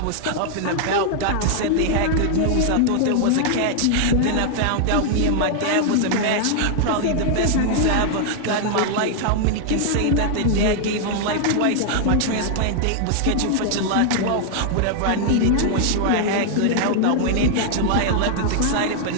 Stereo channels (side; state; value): both; different; correlation 0.00